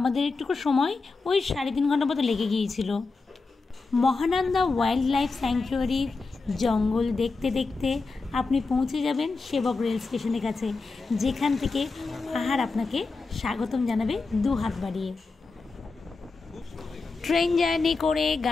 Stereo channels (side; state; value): right; quieter; 4.0 dB